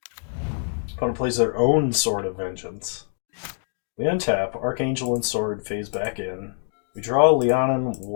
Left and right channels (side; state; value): right; silent; digital silence